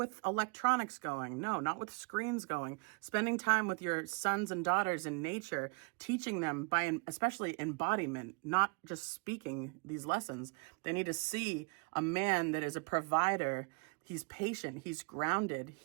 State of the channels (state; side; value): quieter; left; 33.4 dB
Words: electronics going, no, not with screens going, spending time with your sons and daughters in nature, teaching them by especially embodiment, not just speaking these lessons. They need to see a man that is a provider. He's patient, he's grounded,